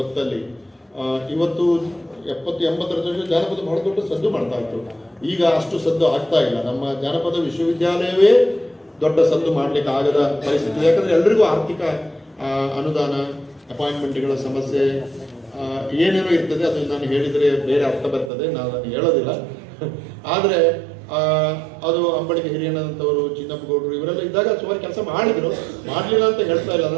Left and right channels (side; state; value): left; drops out; at 18.3 s